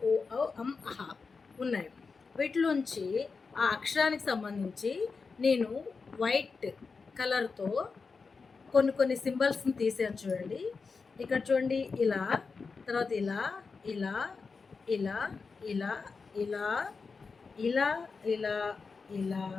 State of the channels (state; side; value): quieter; right; 4.7 dB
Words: ఔ అం అహ ఉన్నాయి. వీటిలోంచి ఆ అక్షరానికి సంబంధించి నేను వైట్ కలర్తో కొన్ని సింబల్స్ని తీసాను చూడండి. ఇక్కడ చూడండి, ఇలా, తర్వాత ఇలా ఇలా ఇలా ఇలా ఇలా ఇలా ఇలా ఇలా